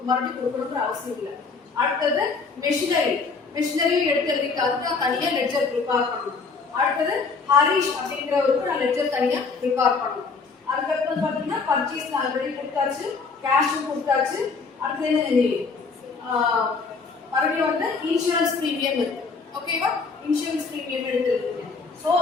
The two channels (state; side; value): quieter; right; 4.6 dB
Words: மறுபடியும் கொடுக்கணும்ன்ற அவசியம் இல்லை. அடுத்தது மெஷினரியும் எடுத்து எழுதிட்டு அதுக்கு நான் தனியா லெட்ஜர் ப்ரிப்பேர் பண்ணணும். அடுத்தது ஹரிஷ் அப்படிங்கிறவருக்கு நான் லெட்ஜர் தனியா ப்ரிப்பேர் பண்ணணும். அதுக்கப்புறம் பாத்தீங்கன்னா பர்ச்சேஸ் நான் ஆல்ரெடி கொடுத்தாச்சு, கேஷும் கொடுத்தாச்சு. அடுத்து என்ன? மறுபடியும் வந்து இன்சூரன்ஸ் பிரீமியம் இருக்கு. ஓகேவா? இன்சூரன்ஸ் பிரீமியம் எடுத்துருக்கீங்க. சோ